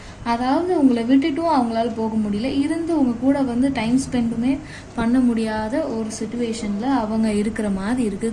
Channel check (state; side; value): identical; both; correlation 1.00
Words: அதாவது உங்களை விட்டுட்டும் அவங்களால போக முடியல, இருந்து உங்க கூட வந்து டைம் ஸ்பெண்டுமே பண்ண முடியாத ஒரு சுச்சுவேஷனில் அவங்க இருக்கிற மாதிரி